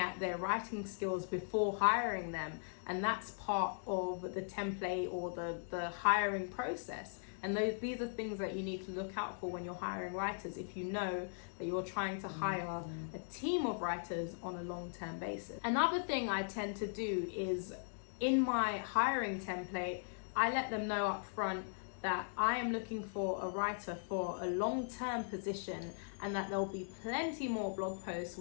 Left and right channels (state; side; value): silent; right; 52 dB below the other